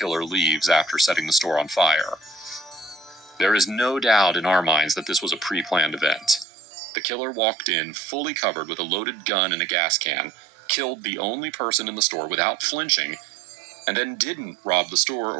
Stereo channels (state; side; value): drops out; left; at 6.5 s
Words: leaves after setting the store on fire. There is no doubt in our minds that this was a pre-planned event. The killer walked in fully covered with a loaded gun and a gas can, killed the only person in the store without flinching, and then didn't rob the store